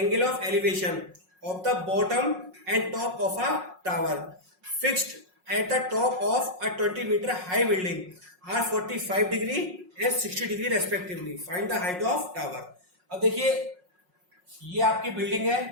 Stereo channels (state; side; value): late; left; 5.5 ms